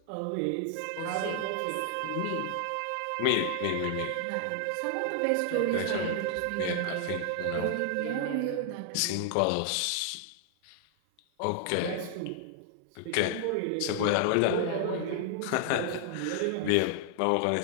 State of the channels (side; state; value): both; different; correlation 0.00